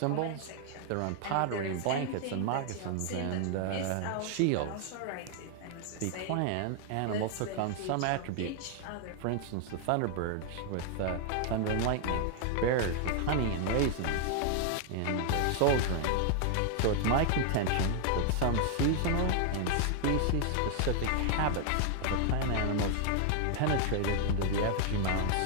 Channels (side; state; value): both; different; correlation 0.00